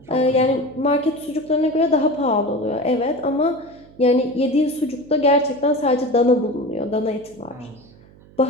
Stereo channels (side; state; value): right; noise; hum, 25 dB below the sound